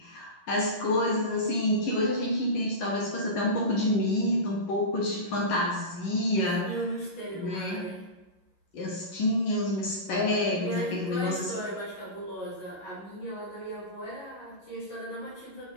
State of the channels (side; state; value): right; late; 11 ms